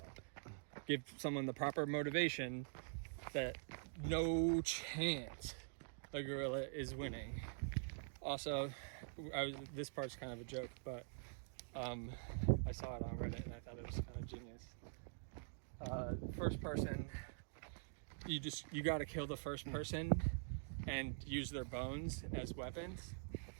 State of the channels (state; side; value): silent; left; digital silence